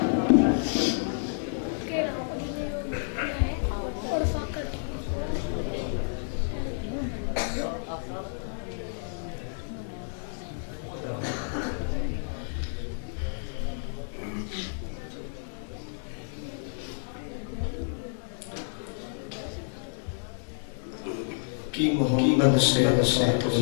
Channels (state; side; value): silent; right; digital silence